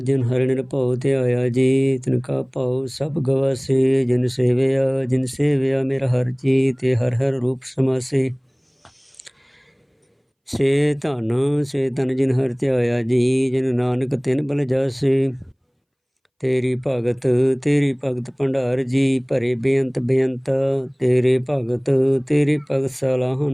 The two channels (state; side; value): identical; both; correlation 1.00